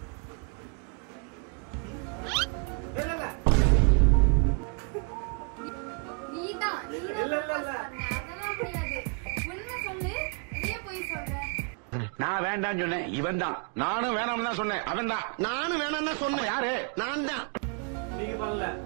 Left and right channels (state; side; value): quieter; left; 36.7 dB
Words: நீதான் அதெல்லாம் முடியாது. உண்மை சொல்லு, அதே போய் சொல்ற. நான் வேண்டான்னு சொன்னேன், இவன் தான். நானும் வேணாம்னு தான் சொன்னேன், அவன் தான். நானும் வேணாம்னு தான் சொன்னேன். யாரு? நான் தான். நீங்க பண்ணல.